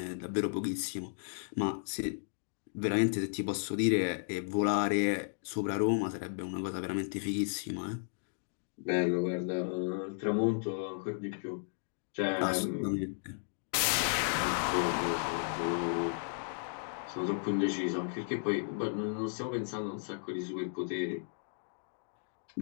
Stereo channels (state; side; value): silent; right; digital silence